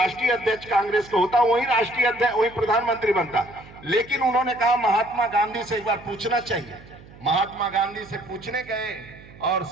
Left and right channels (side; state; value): right; noise; hum, 21 dB below the sound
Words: अध्यक्ष कांग्रेस का होता वही राष्ट्रीय अध्यक्ष, वही प्रधानमंत्री बनता। लेकिन उन्होंने कहा महात्मा गांधी से एक बार पूछना चाहिए। महात्मा गांधी से पूछने गए और